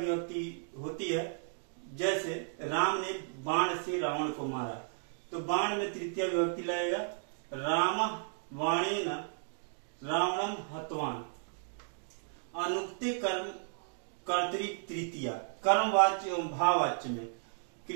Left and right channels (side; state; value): left; silent; digital silence